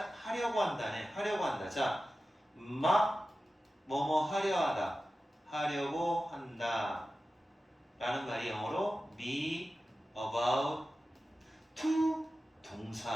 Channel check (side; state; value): both; normal; correlation 0.94